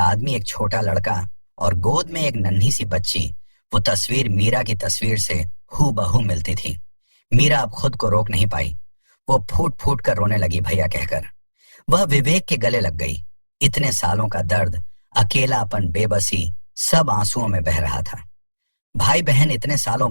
एक छोटा लड़का और गोद में एक नन्ही सी बच्ची। वो तस्वीर मीरा की तस्वीर से हूबहू मिलती थी। मीरा अब खुद को रोक नहीं पाई। वो फूट फूट कर रोने लगी, भैया कहकर। वह विवेक के गले लग गई। इतने सालों का दर्द, अकेलापन, बेबसी, सब आंसुओं में बह रहा था। भाई बहन इतने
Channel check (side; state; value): both; inverted; correlation -1.00